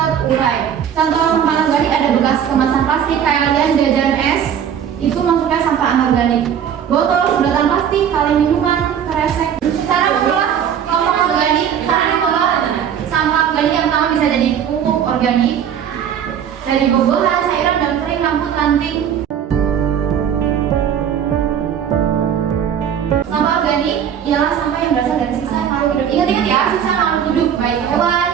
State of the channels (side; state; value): left; quieter; 8.7 dB